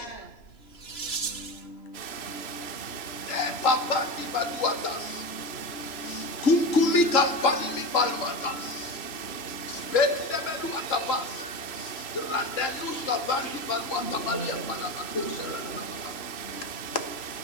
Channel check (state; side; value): late; right; 3.0 ms